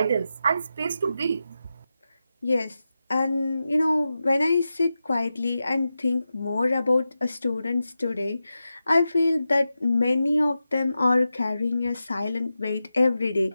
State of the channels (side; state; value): both; inverted; correlation -0.91